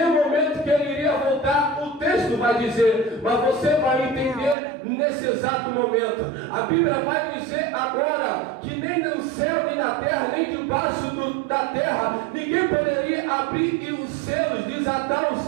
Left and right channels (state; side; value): drops out; left; at 4.5 s